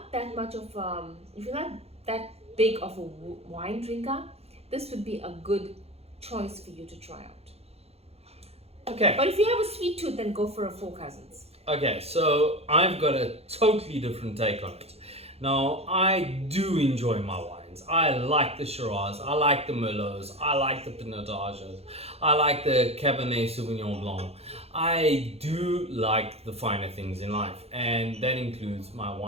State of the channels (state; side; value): late; left; 0.29 ms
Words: that much of, if you're not that big of a wine drinker, this would be a good choice for you to try out. Okay. But if you have a sweet tooth, then go for a Four Cousins. Okay, so I've got a totally different take on it. Now, I do enjoy my wines. wines. I like the Shiraz, I like the Merlots, I like the Pinotages, I like the Cabernet Sauvignon Blanc. I do like the finer things in life, and that includes my